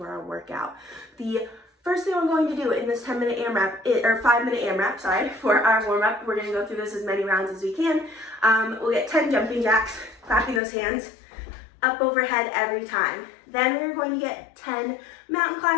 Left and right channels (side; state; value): right; drops out; at 10.6 s